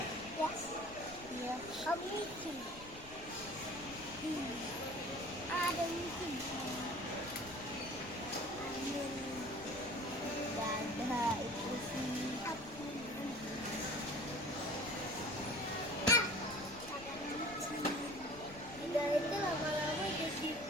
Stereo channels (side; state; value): left; noise; rumble, 17 dB below the sound